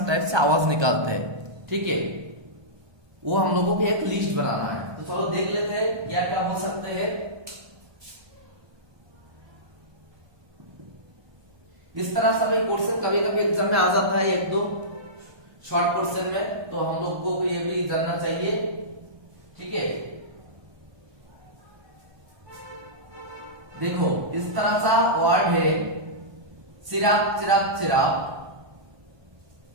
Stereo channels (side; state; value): left; late; 1.2 ms